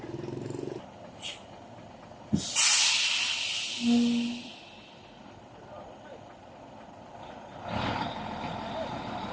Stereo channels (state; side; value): identical; both; correlation 1.00